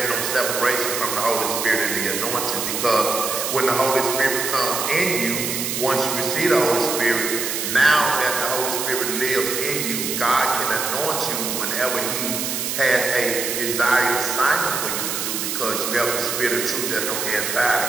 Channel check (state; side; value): noise; right; hiss, 2 dB below the sound